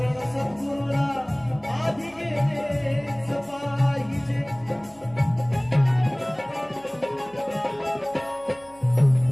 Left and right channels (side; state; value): right; noise; hum, 28 dB below the sound